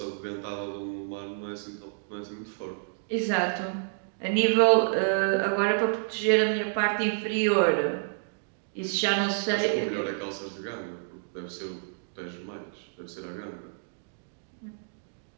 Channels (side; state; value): left; silent; digital silence